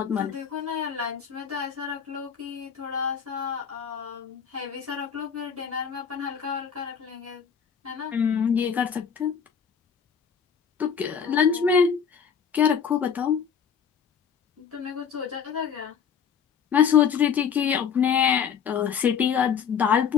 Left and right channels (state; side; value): quieter; right; 7.2 dB